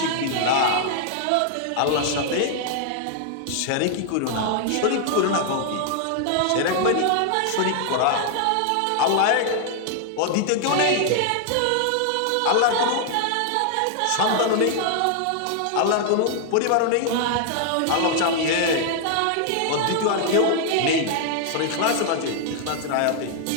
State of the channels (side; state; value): both; different; correlation 0.00